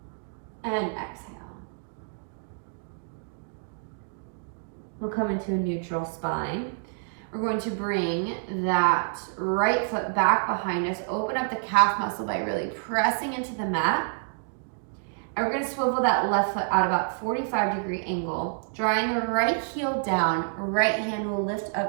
And exhale. We'll come into a neutral spine. We're going to bring that right foot back behind us. Open up the calf muscle by really pressing into the mat. And we're going to swivel that left foot out about 45-degree angle. Drawing the right heel down, right hand will lift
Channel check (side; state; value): left; silent; digital silence